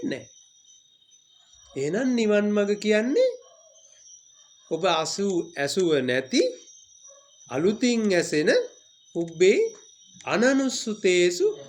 නෑ. එහෙනම් නිවන් මඟ කියන්නේ ඔබ ඇසුව නැති අලුතින් ඇසෙන උබ්බේ අනනුස්සතේසු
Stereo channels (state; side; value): identical; both; correlation 1.00